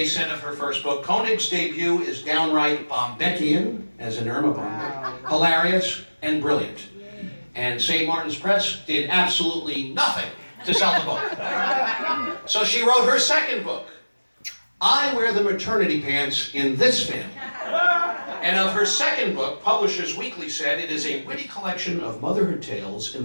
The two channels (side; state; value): both; inverted; correlation -1.00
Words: said of her first book, Konig's debut is downright Bombeckian, as in Irma Bombeck, hilarious and brilliant. And St. Martin's Press did absolutely nothing to sell the book. So she wrote her second book, I Wear the Maternity Pants in This Family. And of her second book, Publishers Weekly said it is a witty collection of motherhood tales in